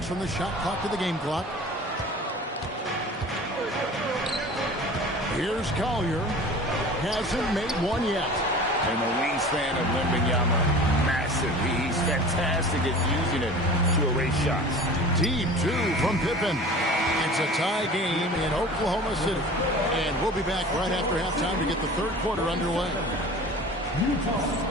from the shot clock to the game clock. Here's Collier. Hasn't made one yet. And the wingspan of Wembanyama, massive. He's fantastic at using it to erase shots. Deep 2 from Pippen. It's a tie game in Oklahoma City. And we'll be back right after halftime to get the 3rd quarter underway. Utah,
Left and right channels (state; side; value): normal; both; correlation 0.40